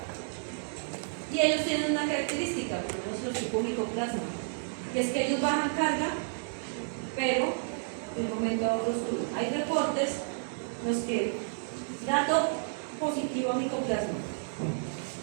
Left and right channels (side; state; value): left; silent; digital silence